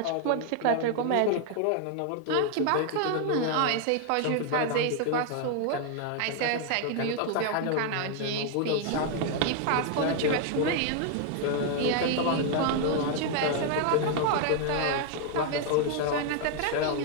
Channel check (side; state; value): both; different; correlation 0.00